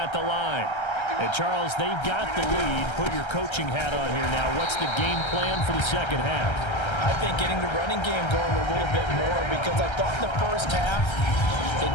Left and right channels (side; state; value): right; late; 1.3 ms